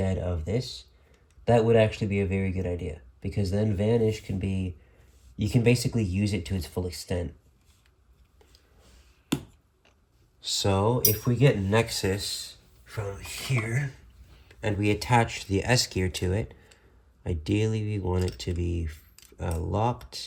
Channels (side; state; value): both; identical; correlation 1.00